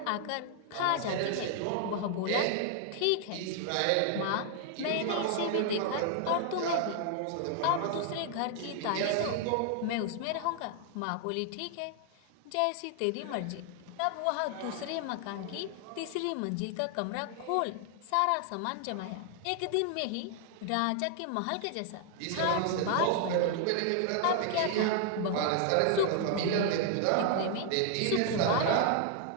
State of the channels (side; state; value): both; different; correlation 0.00